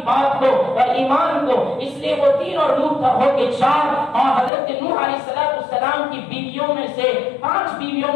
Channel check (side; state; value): right; drops out; at 4.5 s